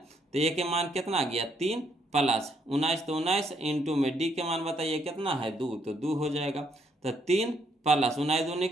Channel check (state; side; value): normal; both; correlation 0.71